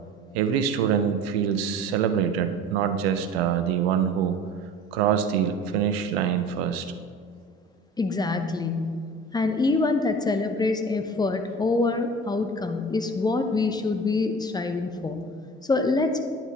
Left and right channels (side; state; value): both; normal; correlation 0.40